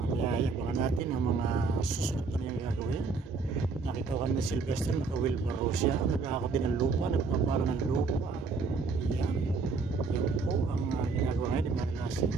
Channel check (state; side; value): quieter; left; 4.5 dB